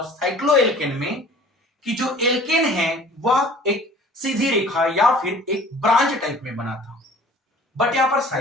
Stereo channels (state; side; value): normal; both; correlation 0.49